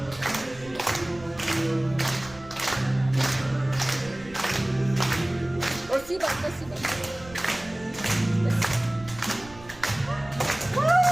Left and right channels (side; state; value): right; noise; rumble, 20 dB below the sound